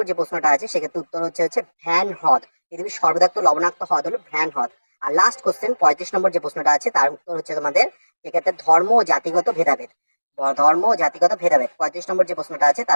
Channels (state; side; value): inverted; both; correlation -1.00